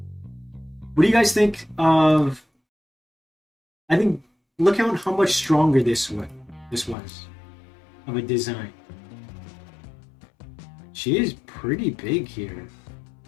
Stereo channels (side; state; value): right; drops out; at 7.0 s